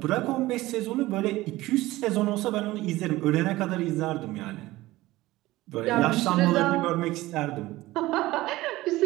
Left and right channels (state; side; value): quieter; left; 18.0 dB